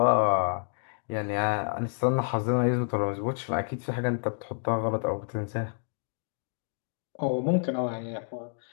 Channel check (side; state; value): right; silent; digital silence